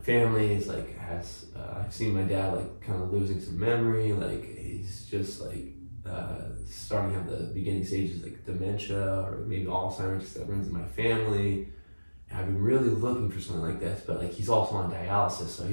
family is like has I've seen my dad like kind of losing some memory, like he's just like starting to have the beginning stages like dementia or maybe Alzheimer's that runs in my family. And I've been really looking for something like this, but like he's also on dialysis, so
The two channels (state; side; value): inverted; both; correlation -1.00